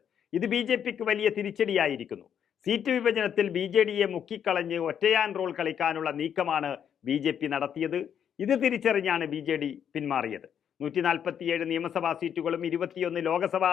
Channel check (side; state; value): right; quieter; 8.6 dB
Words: ഇത് BJPക്ക് വലിയ തിരിച്ചടിയായിരിക്കുന്നു. സീറ്റ് വിഭജനത്തിൽ BJDയെ മുക്കിക്കളഞ്ഞ് ഒറ്റയാൻ റോൾ കളിക്കാനുള്ള നീക്കമാണ് BJP നടത്തിയത്. ഇത് തിരിച്ചറിഞ്ഞാണ് BJD പിന്മാറിയത്. 147 നിയമസഭാ സീറ്റുകളും 21 ലോക്സഭാ